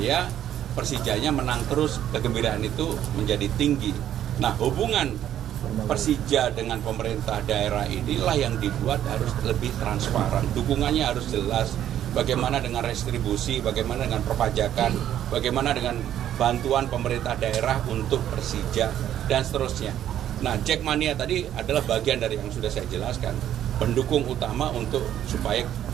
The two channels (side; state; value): left; quieter; 11.1 dB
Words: Persijanya menang terus, kegembiraan itu menjadi tinggi. Nah, hubungan Persija dengan pemerintah daerah inilah yang dibuat harus lebih transparan. Dukungannya harus jelas. Bagaimana dengan restribusi, bagaimana dengan perpajakan, bagaimana dengan bantuan pemerintah daerah untuk Persija, dan seterusnya. Nah, Jackmania tadi adalah bagian dari yang sudah saya jelaskan. Pendukung utama untuk supaya